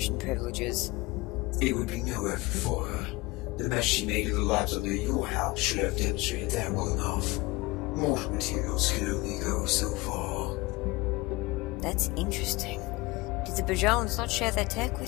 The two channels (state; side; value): quieter; right; 22.3 dB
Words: privileges. It would be no effort for her. The mess she made of the labs under your house should have demonstrated that well enough. Mortal materials can only go so far. That's interesting. Did the Bajans not share their tech